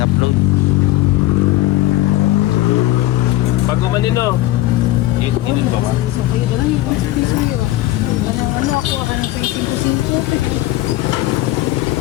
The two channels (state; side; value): quieter; right; 16.0 dB